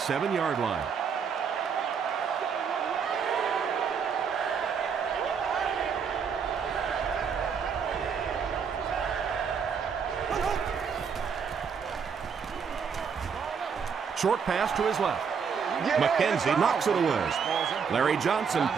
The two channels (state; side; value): quieter; left; 6.5 dB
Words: line. Short pass to his left. McKenzie knocks it away. Larry Johnson